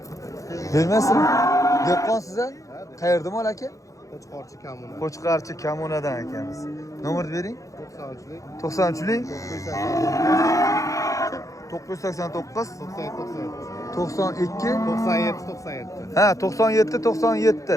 Bermaysizmi? Dehqonsiz a? Qayerda mol aka? Qo'chqorchi kamuni. Qo'chqarchi Kamunadan ekanmiz. Nomerni bering. 93lik 93lik 989 92 97. Ha,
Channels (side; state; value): right; late; 0.16 ms